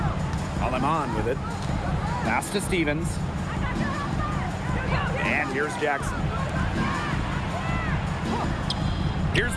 Aleman with it. Pass to Stevens. And here's Jackson. Here's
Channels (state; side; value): identical; both; correlation 1.00